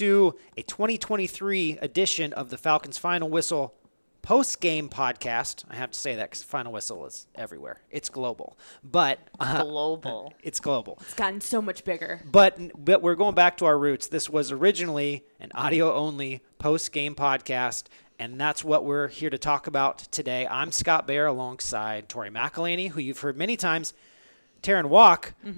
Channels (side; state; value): both; inverted; correlation -1.00